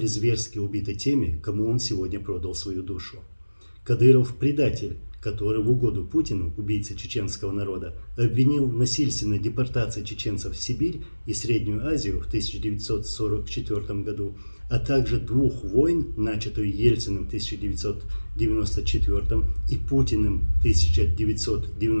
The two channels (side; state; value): both; inverted; correlation -1.00